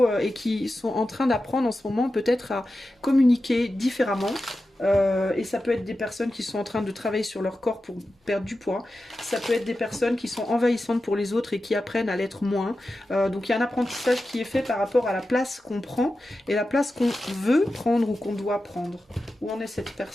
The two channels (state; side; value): normal; both; correlation 0.92